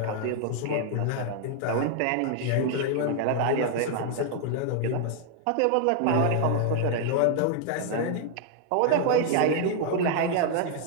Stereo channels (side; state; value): both; different; correlation 0.00